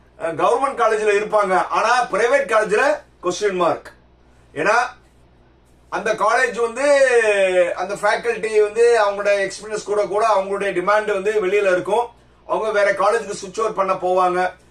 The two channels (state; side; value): identical; both; correlation 1.00